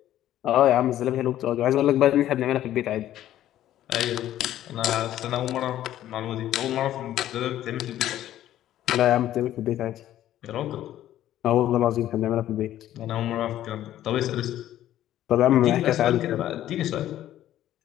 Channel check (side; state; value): right; quieter; 12.7 dB